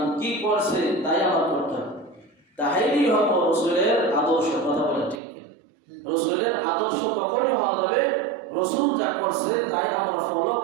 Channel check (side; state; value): left; drops out; at 5.2 s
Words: কি করছে তাই আমার করতে হবে। তাইলেই হবে রাসূলের আদর্শ। কথা বলেন ঠিক কি? রাসূলের আদর্শ তখনই হওয়া যাবে রাসূল যা করছে তাই আমরা ফলো